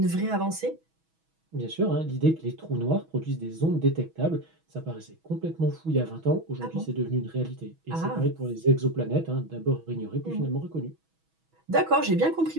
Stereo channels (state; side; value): late; left; 6.2 ms